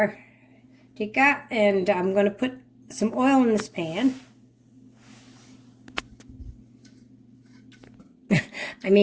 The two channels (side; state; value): both; identical; correlation 1.00